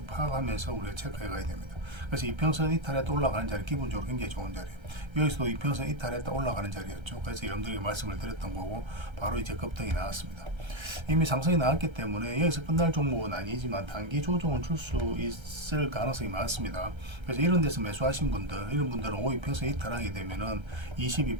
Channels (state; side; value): late; left; 1.3 ms